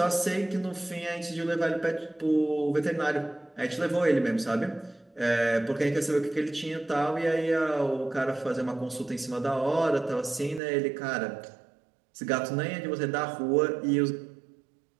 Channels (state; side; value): drops out; left; at 10.6 s